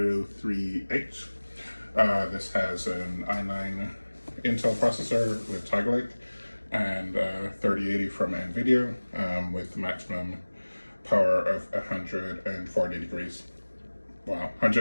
This has an i9 Intel processor with Tiger Lake and 3080 from NVIDIA with maximum power of 140 degrees. Wow,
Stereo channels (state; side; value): inverted; both; correlation -1.00